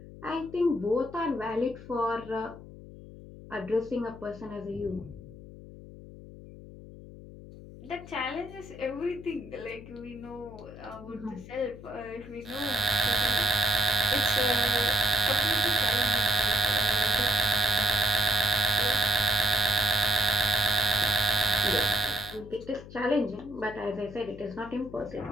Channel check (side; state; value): left; noise; hum, 16 dB below the sound